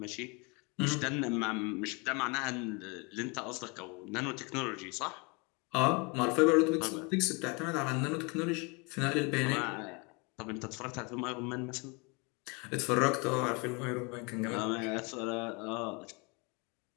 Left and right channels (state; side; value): quieter; right; 29.9 dB